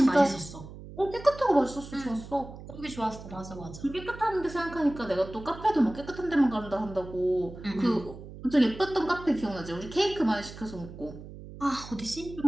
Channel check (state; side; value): noise; right; hum, 14 dB below the sound